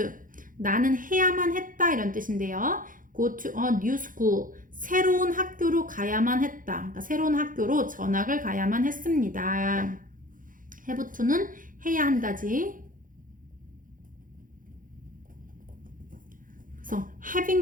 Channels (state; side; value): late; left; 0.39 ms